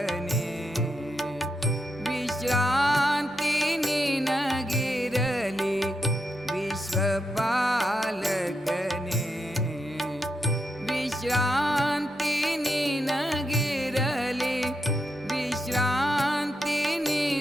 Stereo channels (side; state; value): both; normal; correlation 0.84